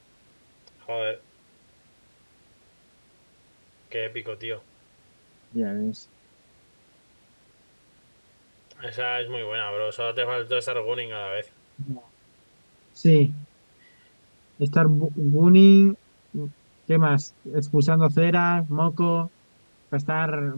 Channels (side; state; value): both; inverted; correlation -1.00